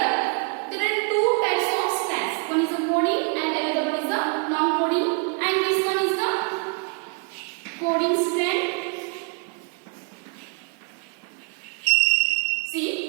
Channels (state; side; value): quieter; left; 36.0 dB